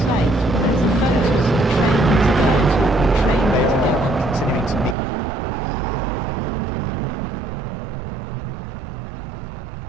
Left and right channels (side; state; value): left; drops out; at 5.0 s